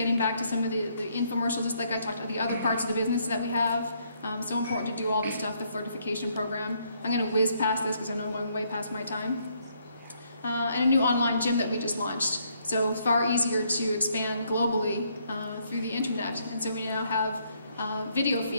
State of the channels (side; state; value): both; inverted; correlation -0.71